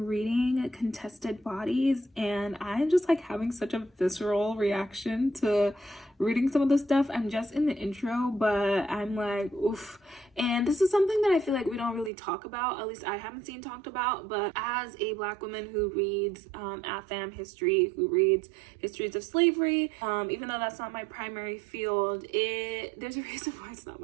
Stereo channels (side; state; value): left; drops out; at 12.1 s